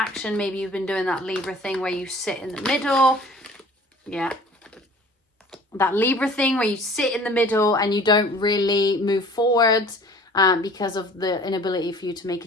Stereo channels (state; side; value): normal; both; correlation 0.49